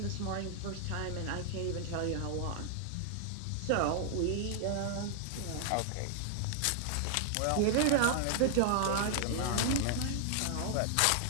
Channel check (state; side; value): different; both; correlation -0.01